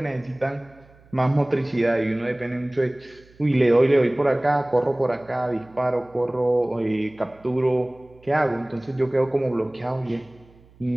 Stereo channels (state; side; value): noise; right; hum, 27 dB below the sound